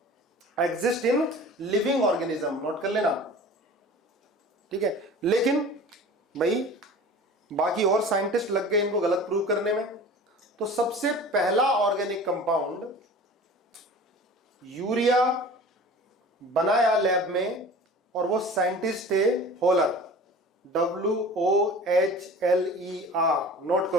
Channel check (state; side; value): normal; both; correlation 0.41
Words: exist in living organism, note कर लेना। ठीक है, लेकिन भाई बाकी और साइंटिस्ट लग गए इनको गलत प्रूव करने में। तो सबसे पहला ऑर्गेनिक कंपाउंड यूरिया बनाया लैब में, और वो साइंटिस्ट थे होलर, WOHLER, नोट